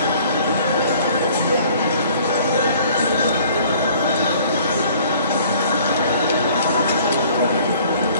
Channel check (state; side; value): inverted; both; correlation -0.55